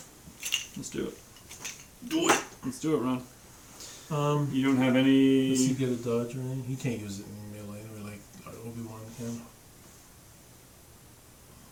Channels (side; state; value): both; identical; correlation 1.00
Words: Let's do it. Do it. Let's do it, Ron. Um, You don't have any. does he get a dodge or anything? He can't use it in melee or like Obi-Wan can.